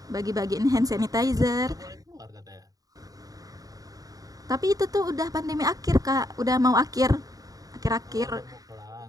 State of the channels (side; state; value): left; late; 0.18 ms